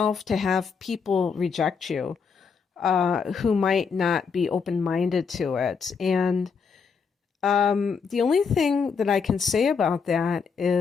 to have people reject you. Who might not be open-minded to it. And the only thing that I can say about that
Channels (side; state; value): right; quieter; 5.7 dB